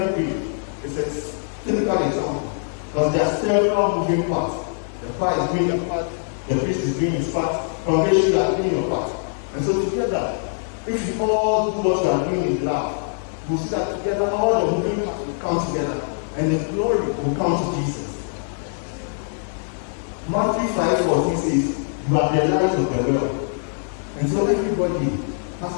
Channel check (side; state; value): right; silent; digital silence